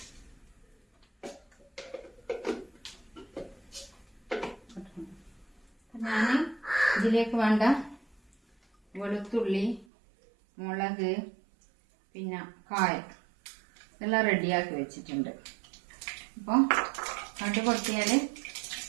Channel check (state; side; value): drops out; left; at 9.9 s